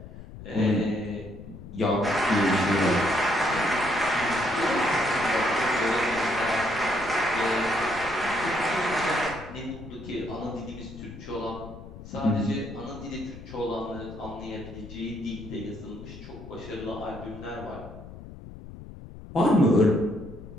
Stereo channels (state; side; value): noise; left; rumble, 14 dB below the sound